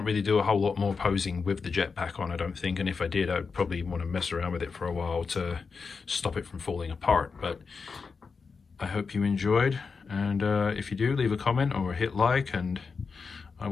really do a whole lot more posing with the jetpack on, I don't think, and if I did, I'd probably want to mess around with it for a while to stop it from falling apart. But I hope you enjoyed, and if you do, leave a comment or hit like, and I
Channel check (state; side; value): quieter; right; 5.0 dB